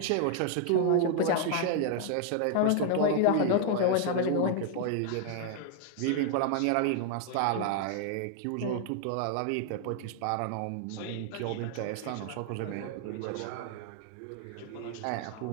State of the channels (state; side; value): different; both; correlation 0.00